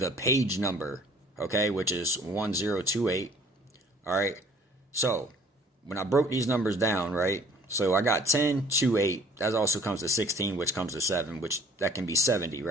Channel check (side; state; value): both; normal; correlation 0.55